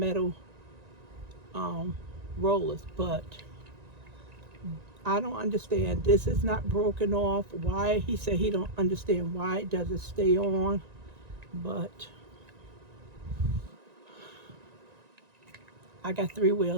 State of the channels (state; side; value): late; left; 1.9 ms